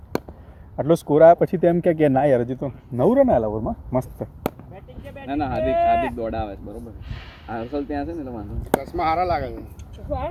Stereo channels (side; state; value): both; identical; correlation 1.00